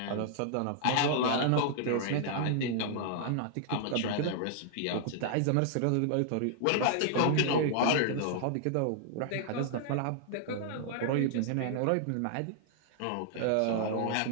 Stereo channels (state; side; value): different; both; correlation -0.01